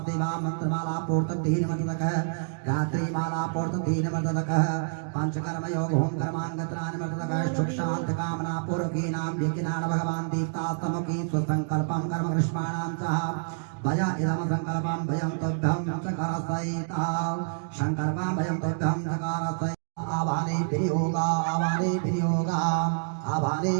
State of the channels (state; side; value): silent; left; digital silence